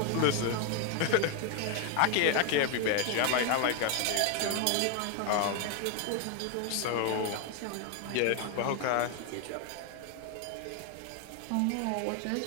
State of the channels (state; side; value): different; both; correlation 0.01